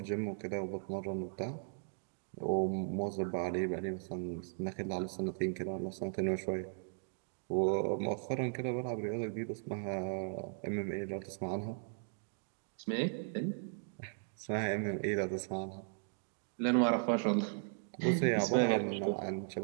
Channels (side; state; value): left; silent; digital silence